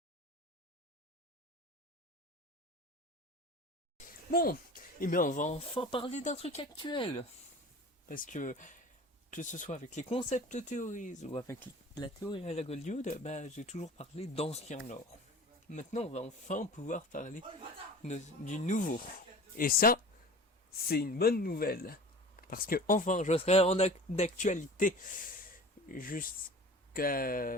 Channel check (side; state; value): both; normal; correlation 0.39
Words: Bon, et bien on va enfin parler d'un truc actuel. Parce que que ce soit avec les concept théories ou avec la théorie à la Goldioud, j'ai toujours parlé d'ancien lore. Maintenant, on va enfin pouvoir parler du nouveau. Et ça, c'est une bonne nouvelle. Parce que enfin, je serai en d'actualité